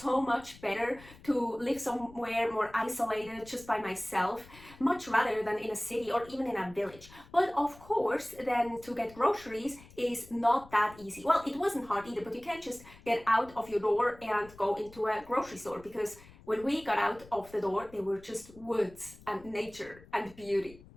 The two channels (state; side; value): noise; left; rumble, 21 dB below the sound